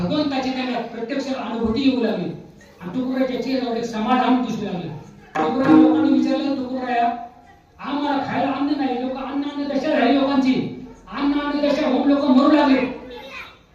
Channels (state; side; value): identical; both; correlation 1.00